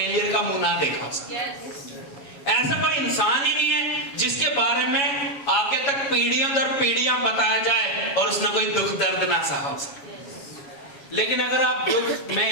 का मुंह ना देखा। ऐसा कोई इंसान ही नहीं है जिसके बारे में आगे तक पीढ़ियों दर पीढ़ियां बताया जाए और उसने कोई दुख दर्द ना सहा हो सके। लेकिन अगर आप दुख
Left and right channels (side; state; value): right; late; 7.2 ms